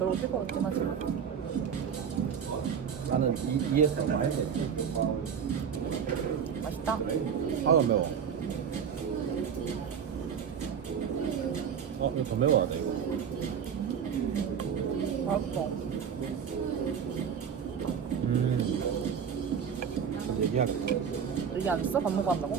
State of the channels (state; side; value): quieter; left; 7.4 dB